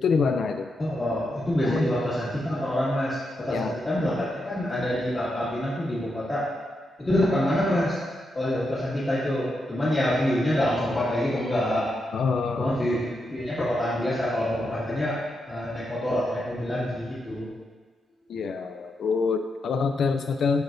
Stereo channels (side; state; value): both; normal; correlation 0.84